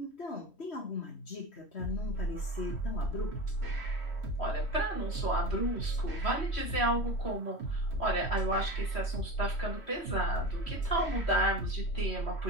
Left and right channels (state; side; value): late; right; 3.1 ms